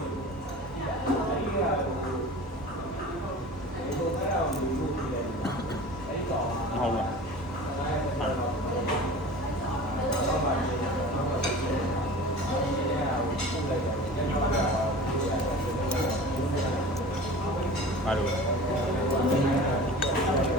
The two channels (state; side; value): normal; both; correlation 0.38